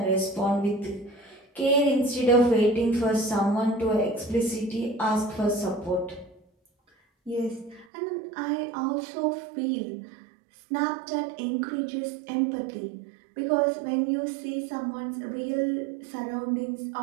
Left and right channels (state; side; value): drops out; left; at 7.9 s